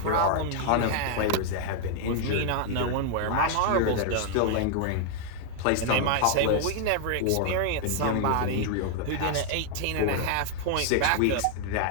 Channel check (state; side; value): different; both; correlation 0.00